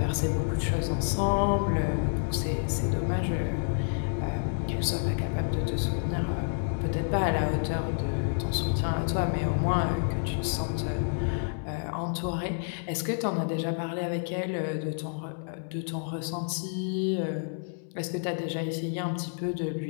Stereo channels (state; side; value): silent; right; 58 dB below the other